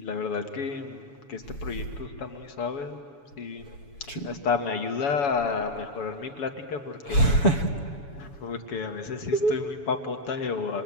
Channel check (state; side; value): late; right; 7.1 ms